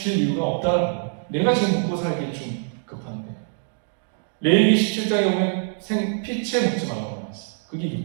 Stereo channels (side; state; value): left; silent; digital silence